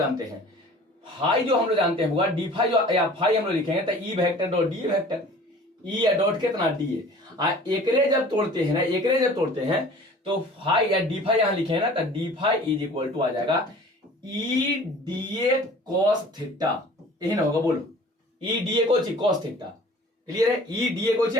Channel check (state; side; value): normal; both; correlation 0.46